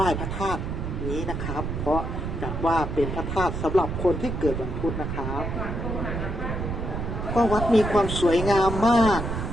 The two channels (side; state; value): right; noise; rumble, 4 dB below the sound